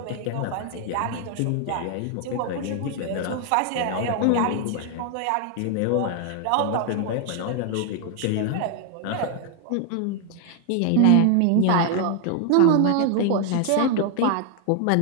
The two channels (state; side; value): different; both; correlation 0.00